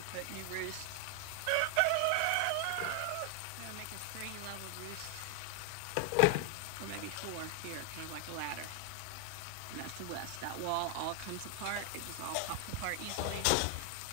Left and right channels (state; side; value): different; both; correlation 0.00